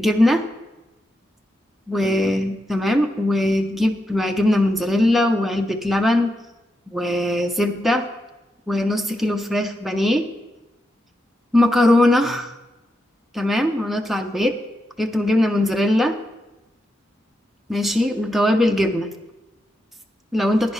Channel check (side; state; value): both; normal; correlation 0.86